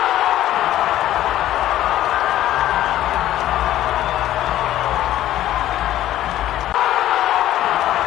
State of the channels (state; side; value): quieter; right; 13.3 dB